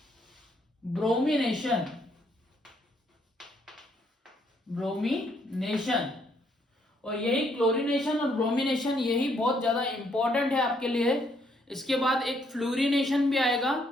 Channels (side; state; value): both; normal; correlation 0.71